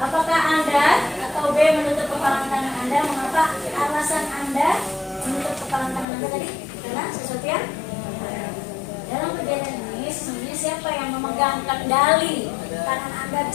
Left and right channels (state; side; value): drops out; right; at 6.1 s